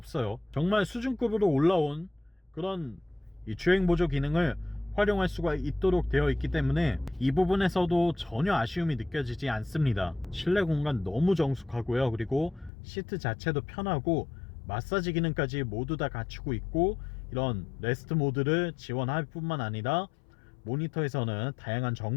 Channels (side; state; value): right; drops out; at 12.7 s